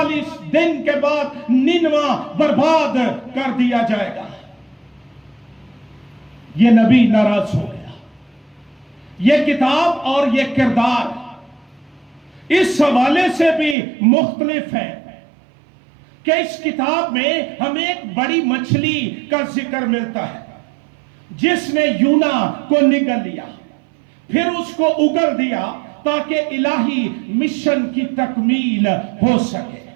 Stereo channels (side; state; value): left; drops out; at 13.8 s